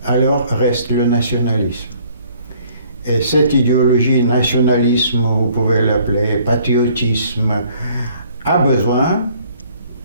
alors reste le nationalisme. Et cette idéologie, nationalisme, vous pouvez l'appeler patriotisme, a besoin,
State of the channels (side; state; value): both; inverted; correlation -0.60